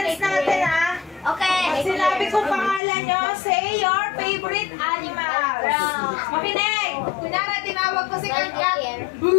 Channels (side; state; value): right; drops out; at 2.8 s